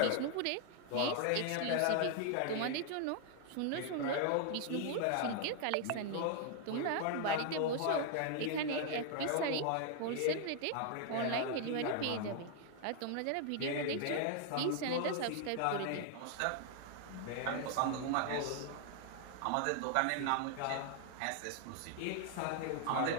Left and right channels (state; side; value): different; both; correlation 0.00